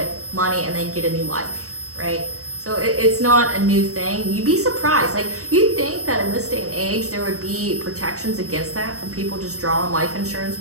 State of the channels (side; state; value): left; late; 0.65 ms